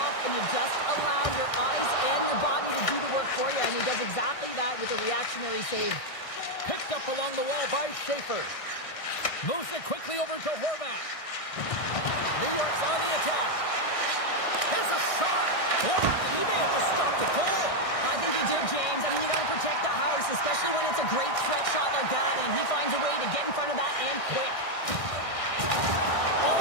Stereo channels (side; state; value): right; late; 1.6 ms